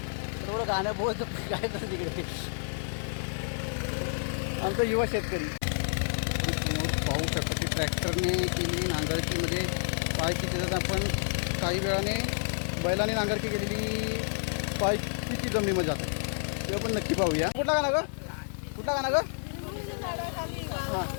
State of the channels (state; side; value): silent; right; 58 dB below the other